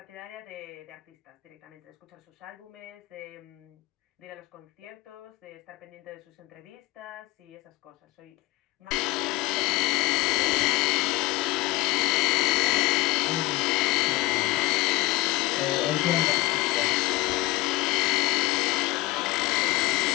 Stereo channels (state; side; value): quieter; right; 19.3 dB